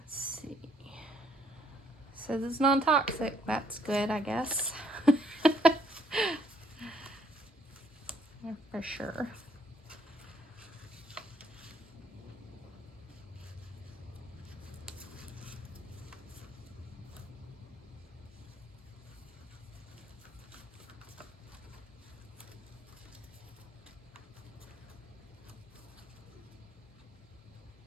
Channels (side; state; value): both; normal; correlation 0.68